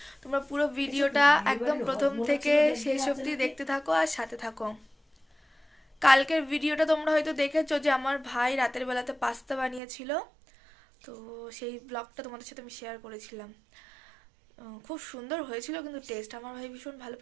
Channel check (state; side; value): drops out; left; at 9.8 s